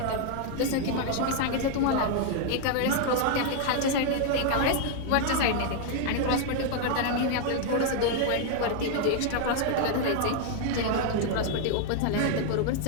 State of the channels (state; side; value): different; both; correlation 0.00